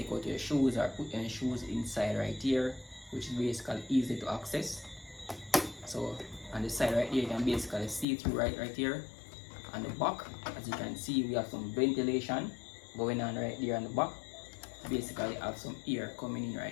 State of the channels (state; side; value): drops out; right; at 8.1 s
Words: out your shoes or put your shoes inside right here, which is basically easy to access. So on the side right here you can basically see through right here. On the back, as you can see, we have some ventilation going on right there on the back. Basically have some air coming in